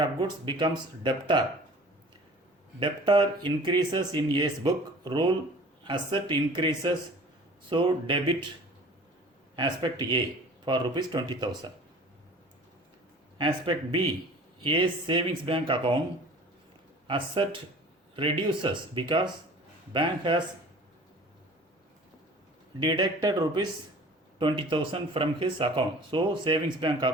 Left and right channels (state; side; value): normal; both; correlation 0.45